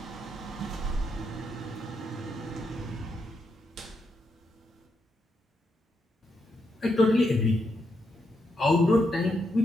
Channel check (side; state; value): both; normal; correlation 0.81